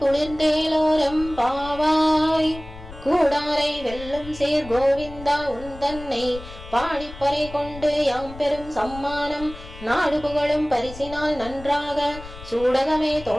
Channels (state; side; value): noise; left; rumble, 15 dB below the sound